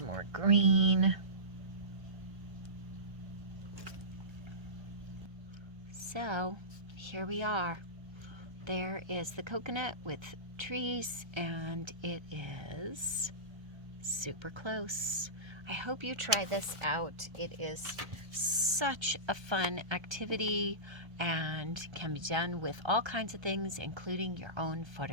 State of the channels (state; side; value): late; left; 1.3 ms